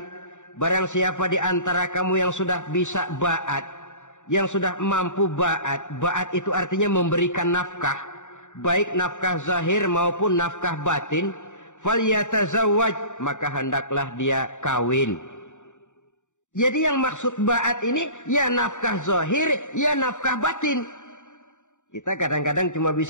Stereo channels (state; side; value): late; right; 0.85 ms